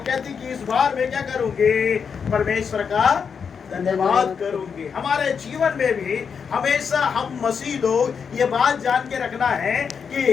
कहती कि इस बार मैं क्या करूंगी, परमेश्वर का धन्यवाद करूंगी। हमारे जीवन में भी हमेशा हम मसीह लोग ये बात जान के रखना है कि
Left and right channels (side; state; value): right; quieter; 6.4 dB